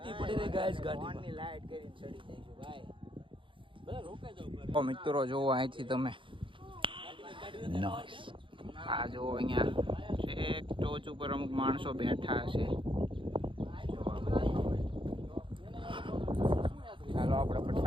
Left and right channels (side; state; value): left; late; 0.25 ms